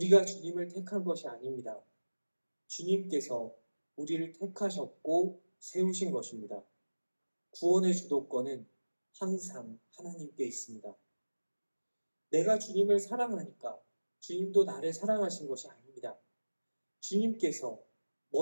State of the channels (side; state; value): both; inverted; correlation -1.00